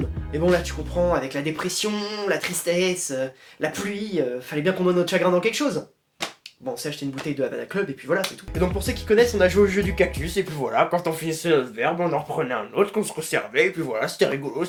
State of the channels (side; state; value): both; identical; correlation 1.00